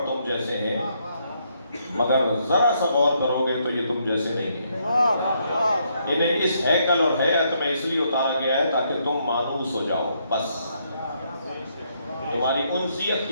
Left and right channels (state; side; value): inverted; both; correlation -0.74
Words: تم جیسے ہیں، مگر ذرا سا غور کرو گے تو یہ تم جیسے نہیں ہیں۔ انہیں اس ہیکل اور ہیئت میں اس لیے اتارا گیا ہے تاکہ تم مانوس ہو جاؤ، بس تمہاری انسیت